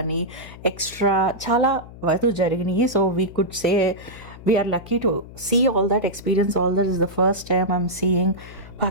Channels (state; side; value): noise; left; hum, 17 dB below the sound